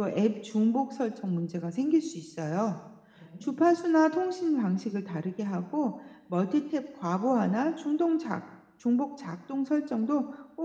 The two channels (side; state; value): both; identical; correlation 1.00